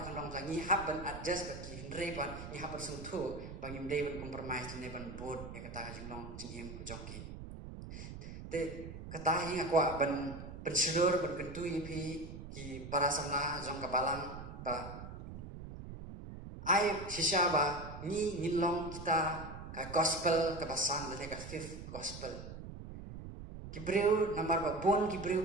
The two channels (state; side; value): noise; right; rumble, 10 dB below the sound